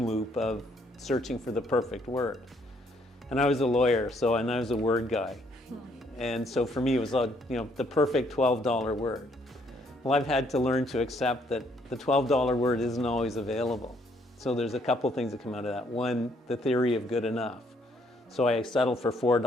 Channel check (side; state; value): both; normal; correlation 0.68